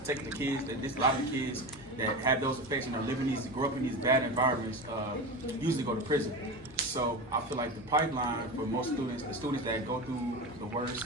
take the kids a lot of the kids that have those effects and grow up in these bad environments usually go to prison. So I feel like the pipeline for most students, the students that go through the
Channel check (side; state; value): both; normal; correlation 0.24